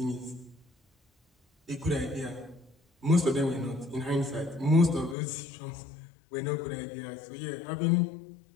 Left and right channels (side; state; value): right; drops out; at 5.2 s